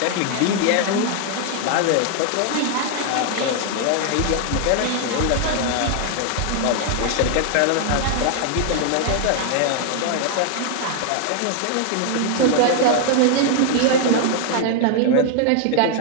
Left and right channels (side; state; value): both; different; correlation 0.00